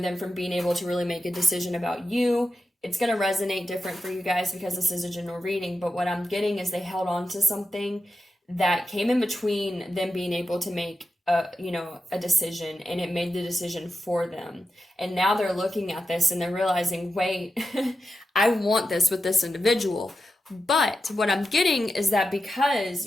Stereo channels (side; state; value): both; normal; correlation 0.89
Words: from being able to really make a decision about you. It's going to resonate different for you guys because this is a general reading, but what I'm getting is they held on to something that came in between them being able to make a decision, and it made the decision for them. And now they're looking at this and they're realizing, wait, I want this with this individual. But what I'm getting is that because,